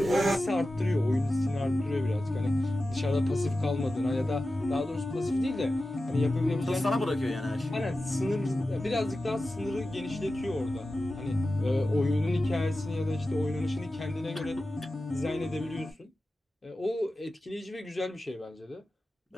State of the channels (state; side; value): normal; both; correlation 0.94